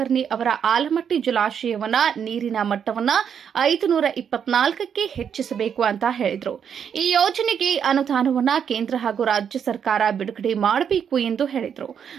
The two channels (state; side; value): quieter; left; 7.8 dB